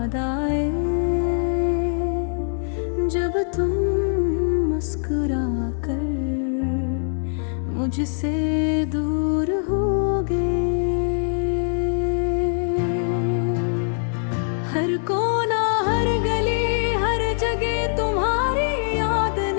आए जब तुम मुस्कुरा कर मुझसे दूर हो गए। हर कोना हर गली हर जगह तुम्हारी याद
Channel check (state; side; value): silent; right; digital silence